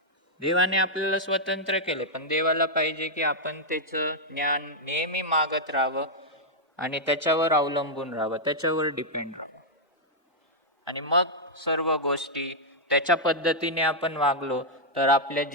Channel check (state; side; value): normal; both; correlation -0.05